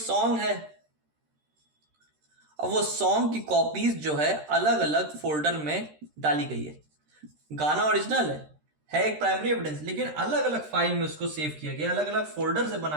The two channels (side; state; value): left; late; 13 ms